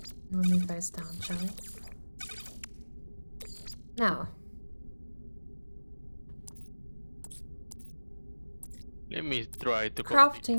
We'll move those down, shall we? Now, let me try to complete this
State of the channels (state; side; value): inverted; both; correlation -1.00